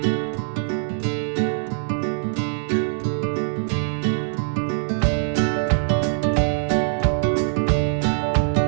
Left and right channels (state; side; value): silent; left; digital silence